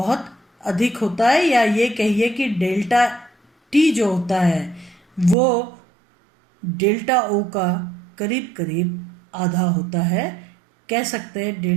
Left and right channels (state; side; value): drops out; left; at 5.4 s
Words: अधिक होता है, या ये कहिए कि डेल्टा टी जो होता है वो डेल्टा ओ का करीब करीब आधा होता है। कह सकते हैं